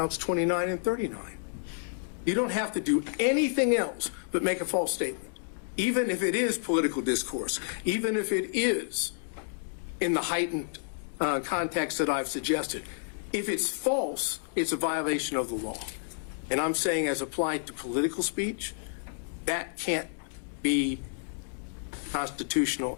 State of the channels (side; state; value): right; silent; digital silence